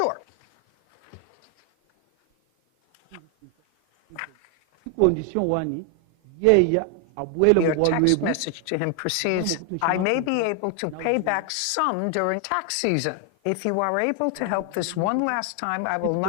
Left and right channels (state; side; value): different; both; correlation 0.00